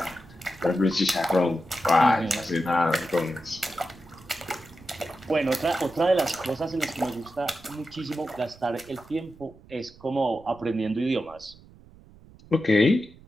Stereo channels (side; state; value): right; noise; rumble, 23 dB below the sound